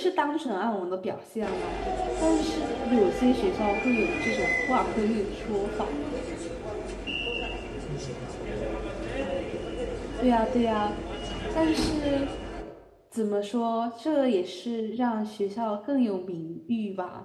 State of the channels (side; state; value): both; identical; correlation 1.00